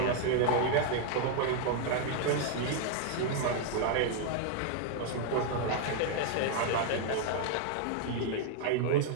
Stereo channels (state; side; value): different; both; correlation 0.00